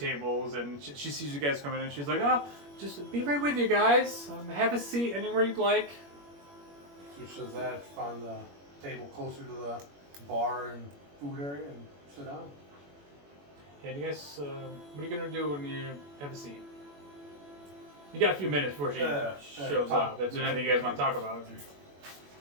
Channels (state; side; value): late; left; 21 ms